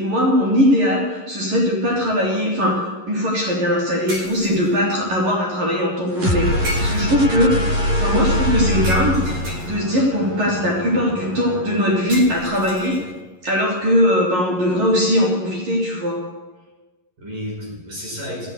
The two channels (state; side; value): late; left; 11 ms